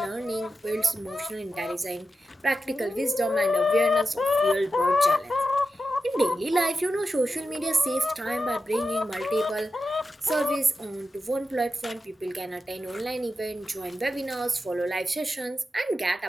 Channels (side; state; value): both; normal; correlation 0.90